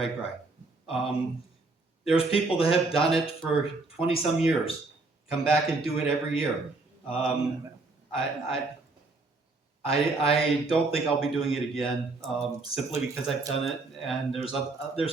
There's people that have done it for 20 some years, come back and do it every year. I don't think I'll be doing it again, simply because I've done it, and there's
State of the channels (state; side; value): quieter; left; 3.4 dB